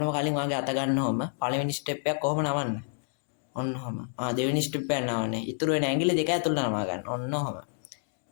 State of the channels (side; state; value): right; silent; digital silence